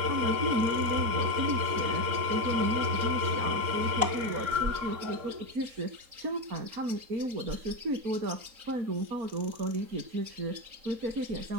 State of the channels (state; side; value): late; left; 4.1 ms